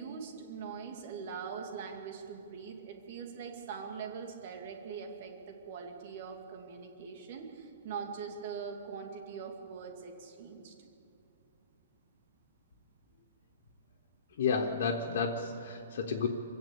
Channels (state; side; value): inverted; both; correlation -0.40